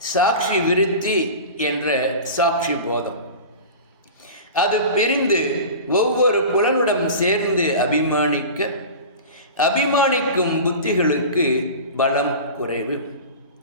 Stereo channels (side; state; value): both; inverted; correlation -0.33